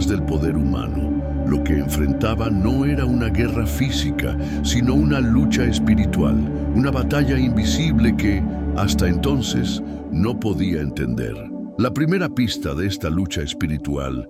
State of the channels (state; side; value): identical; both; correlation 1.00